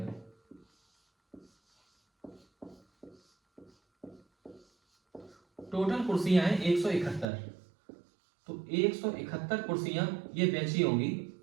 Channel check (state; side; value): drops out; left; at 7.2 s